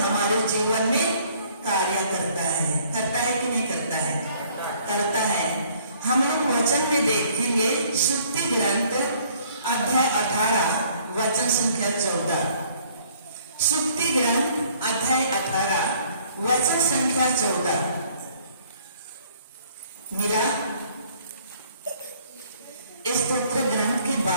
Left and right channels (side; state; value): both; inverted; correlation -0.59